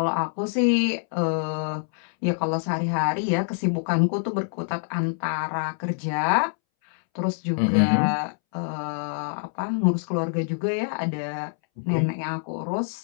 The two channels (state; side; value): silent; right; 61 dB below the other